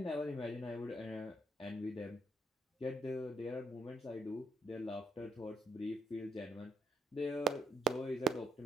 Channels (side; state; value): both; normal; correlation 0.75